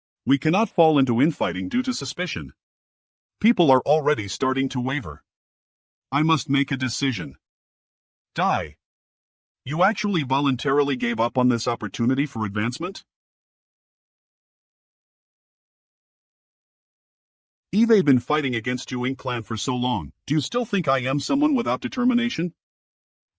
We cannot fall into infighting due to suspicion. People are already starting to waver. I must make a decision. Die. You actually voluntarily gave up on this opportunity for advancement? Eve been fighting against you Ink clan for so long, do you still think I am someone without determination?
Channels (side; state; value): both; identical; correlation 1.00